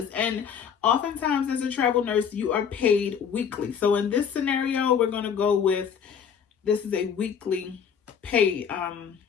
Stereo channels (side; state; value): right; quieter; 7.4 dB